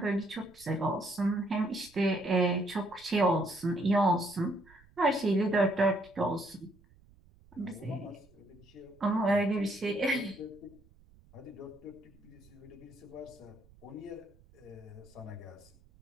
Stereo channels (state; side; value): noise; right; rumble, 27 dB below the sound